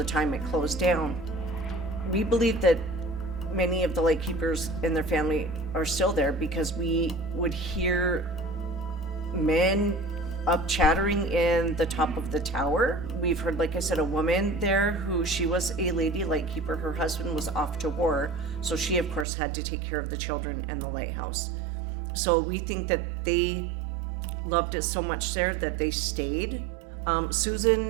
time it closed down. We believe that many of the light keepers and their family are still there because we would hear men up chattering in the top of the tower. We've heard, like I said, a woman there who she was a lady lightkeeper. Her husband was off to war, so she of course had to take care of the children and the lighthouse. So we think that they loved it so much there that they stayed.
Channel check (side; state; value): left; drops out; at 19.2 s